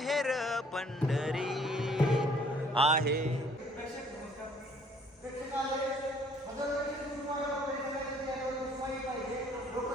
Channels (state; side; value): normal; both; correlation 0.59